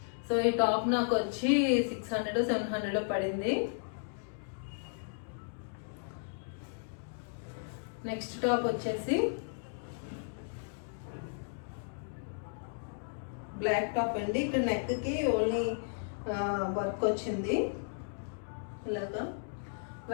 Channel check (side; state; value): right; silent; digital silence